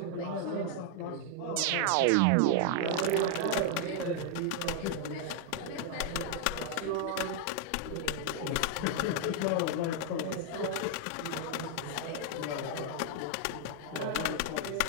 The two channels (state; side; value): different; both; correlation 0.00